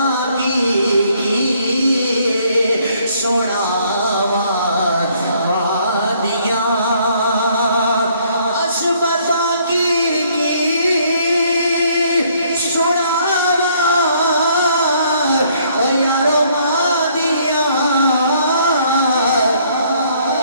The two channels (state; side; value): inverted; both; correlation -0.64